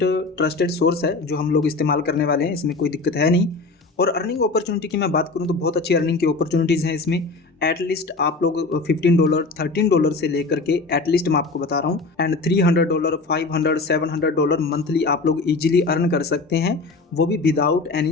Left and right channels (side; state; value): right; quieter; 3.7 dB